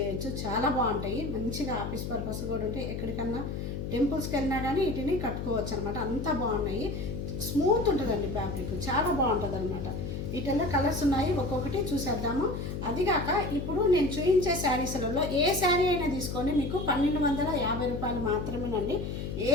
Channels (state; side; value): noise; left; hum, 5 dB below the sound